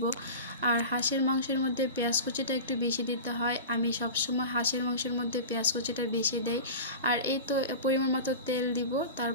আর হাঁসের মাংসের মধ্যে পেঁয়াজ কুচিটা একটু বেশি দিতে হয়। আমি সবসময় হাঁসের মাংসের মধ্যে পেঁয়াজ কুচিটা বেশি দেই। আর এই তো পরিমাণ মতো তেল দিব,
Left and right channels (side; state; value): both; inverted; correlation -0.31